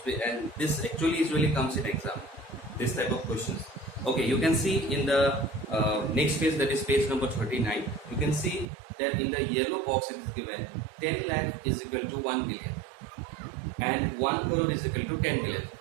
and this actually usually comes in exam, this type of questions. Okay, you can see in the next page, that is page number 39, you can see that in the yellow box it is given 10 lakh is equal to 1 billion and 1 crore is equal to 10 billion.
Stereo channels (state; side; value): drops out; left; at 8.7 s